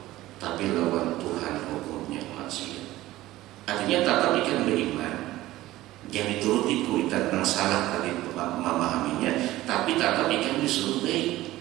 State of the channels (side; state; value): left; quieter; 16.4 dB